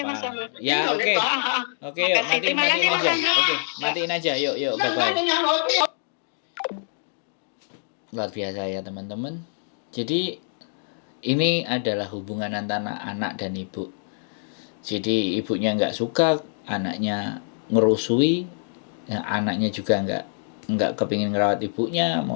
Ya oke, oke yuk, matiin aja. Oke, matiin aja, yuk, bye-bye. Luar biasa ya teman-teman. Jadi ini adalah hubungan antara anak dan ibu. Jadi ibunya nggak suka, anaknya ngerusui, ya, anaknya juga nggak kepingin ngerawat ibunya,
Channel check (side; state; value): right; silent; digital silence